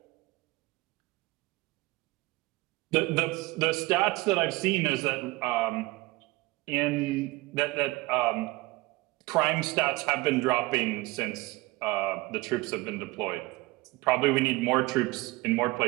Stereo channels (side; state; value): left; quieter; 21.5 dB